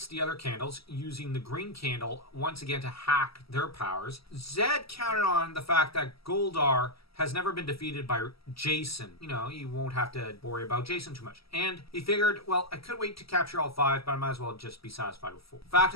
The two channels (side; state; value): right; late; 0.76 ms